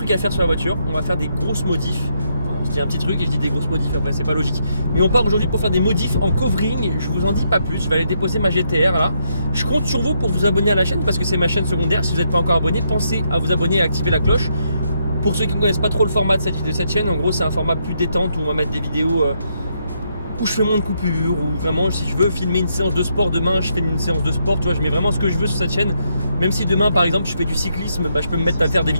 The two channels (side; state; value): both; inverted; correlation -0.77